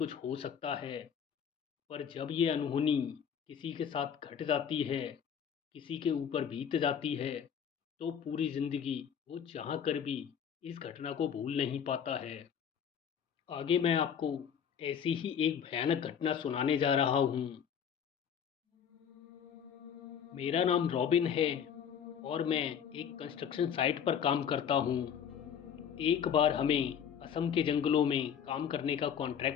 हो सकता है। पर जब ये अनहोनी किसी के साथ घट जाती है, किसी के ऊपर बीत जाती है, तो पूरी ज़िंदगी वो चाह कर भी इस घटना को भूल नहीं पाता है। आगे मैं आपको ऐसी ही एक भयानक घटना सुनाने जा रहा हूँ। मेरा नाम रॉबिन है और मैं एक कंस्ट्रक्शन साइट पर काम करता हूँ। एक बार हमें असम के जंगलों में काम करने का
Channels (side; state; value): right; quieter; 8.0 dB